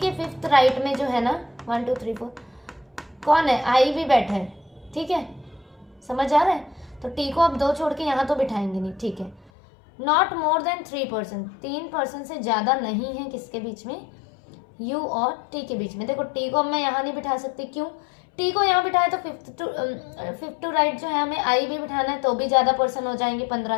के 5th राइट में जो है ना 1 2 3 4 कौन है? आई भी बैठा है। ठीक है, समझ आ रहा है? तो टी को अब 2 छोड़ के यहाँ तो बिठाएंगे नहीं। ठीक है, not more than 3 person, 3 person से ज्यादा नहीं है किसके बीच में? यू और टी के बीच में। देखो टी को अब मैं यहाँ नहीं बिठा सकती, क्यों? टी को यहाँ बिठाए तो 5th टू राइट जो है हमें आई भी बिठाना है, तो भी ज्यादा पर्सन हो जाएंगे 15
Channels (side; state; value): right; drops out; at 9.5 s